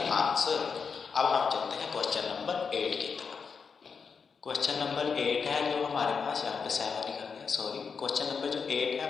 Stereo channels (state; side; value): quieter; right; 5.7 dB